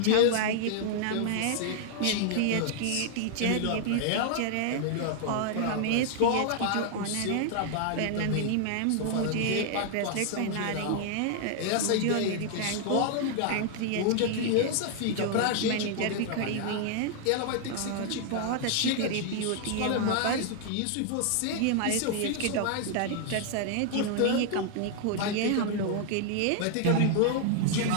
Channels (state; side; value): different; both; correlation 0.00